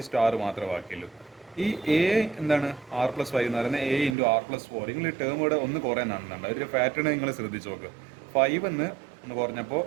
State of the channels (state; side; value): drops out; left; at 4.2 s